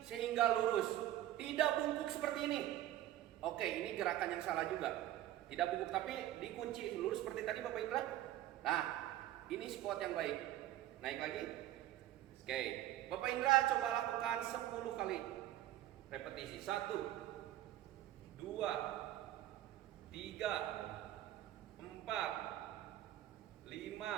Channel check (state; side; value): quieter; left; 13.6 dB